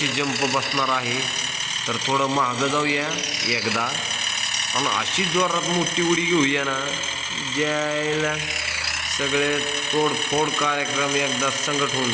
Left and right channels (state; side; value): identical; both; correlation 1.00